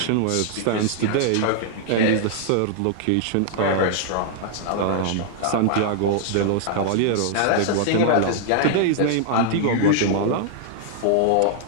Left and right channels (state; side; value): different; both; correlation -0.01